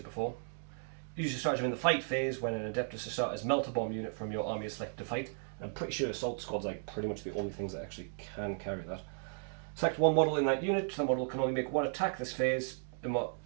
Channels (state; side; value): silent; left; digital silence